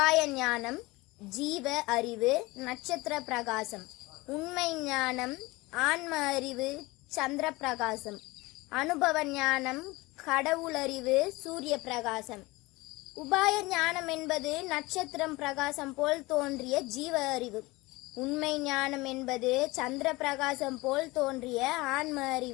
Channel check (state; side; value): quieter; right; 22.0 dB